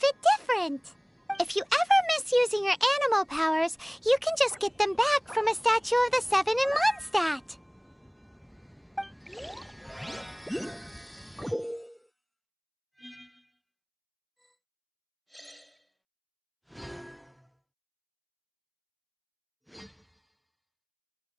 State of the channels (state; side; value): identical; both; correlation 1.00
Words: different. If you ever miss using your animal powers, you can just get them back from a statue of the Seven in Mondstadt.